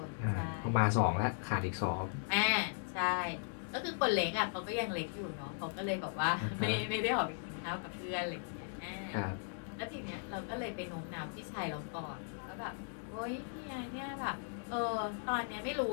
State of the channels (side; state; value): right; silent; digital silence